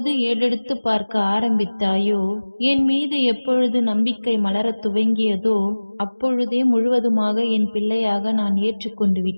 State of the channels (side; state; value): both; inverted; correlation -1.00